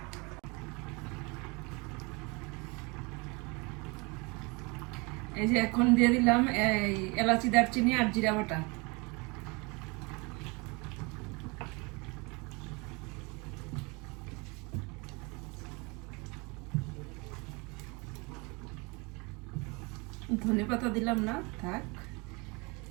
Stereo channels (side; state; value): left; quieter; 28.4 dB